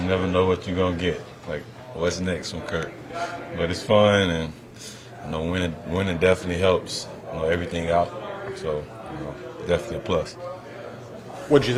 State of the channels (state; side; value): identical; both; correlation 1.00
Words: never know what you're gonna get. Like what's next from Kirk. But it's fun and. Winning definitely helps, everything out. So, definitely a plus. What did you